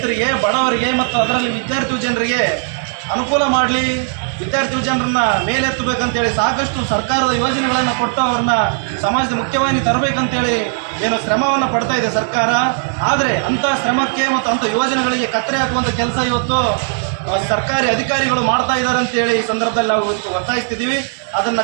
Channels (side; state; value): left; silent; digital silence